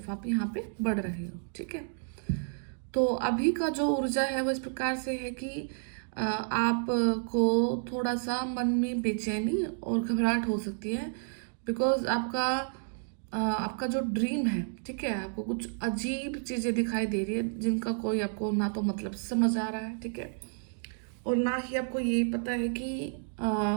आप यहाँ पे बढ़ रहे हो। ठीक है, तो अभी का जो ऊर्जा है वो इस प्रकार से है कि आप को थोड़ा सा मन में बेचैनी और घबराहट हो सकती है। बिकॉज आपका जो ड्रीम है, ठीक है, आपको कुछ अजीब चीज़ें दिखाई दे रही है जिनका कोई आपको ना तो मतलब समझ आ रहा है, ठीक है, और ना ही आपको ये पता है कि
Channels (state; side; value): silent; left; digital silence